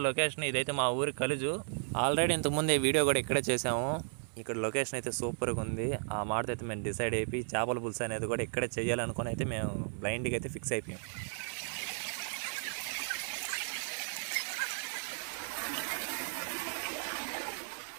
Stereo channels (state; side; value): silent; left; 55 dB below the other